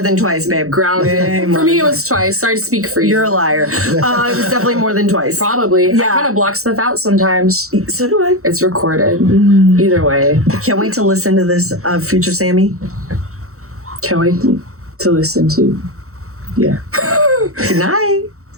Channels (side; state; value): left; late; 0.64 ms